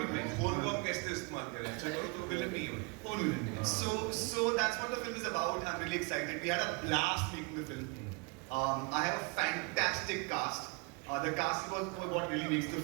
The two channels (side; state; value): left; quieter; 30.4 dB